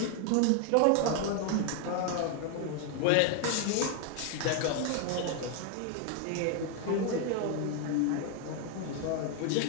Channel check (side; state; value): both; different; correlation 0.01